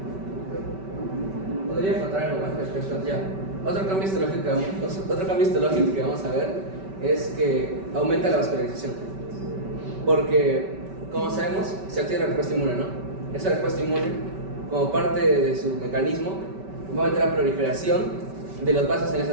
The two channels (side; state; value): left; late; 5.2 ms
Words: Podría contar algo más respecto a ya. Otro cambio histológico que vamos a ver es que aumenta la vascularización. Porque, como sabemos, se activa la respuesta inmune, ¿no? Esa respuesta inmune, como parte de su mecanismo, va a aumentar la proliferación de los vasos en